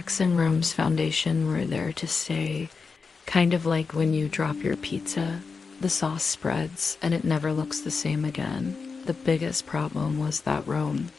in Rome's foundation were there to stay, kind of like when you drop your pizza. The sauce spreads, and it never looks the same again. The biggest problem was that Rome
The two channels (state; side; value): quieter; right; 4.9 dB